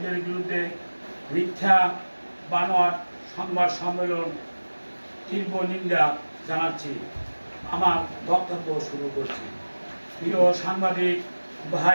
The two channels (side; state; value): both; inverted; correlation -1.00